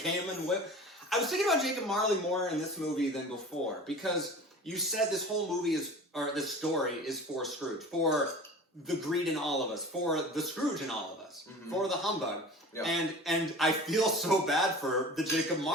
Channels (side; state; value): both; normal; correlation 0.38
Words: and whipped. I was thinking about Jacob Marley more in this movie than before because you said this whole movie this story is for Scrooge, for the greed in all of us, for the Scrooge in all of us, for the humbug. Yep. And I feel so bad for the Jacob